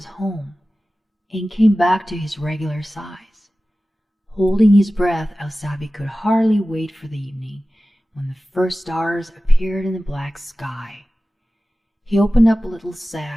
home and came back to his regular size. Holding his breath, Asabi could hardly wait for the evening when the first stars appeared in the black sky. He opened up a little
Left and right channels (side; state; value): both; normal; correlation 0.96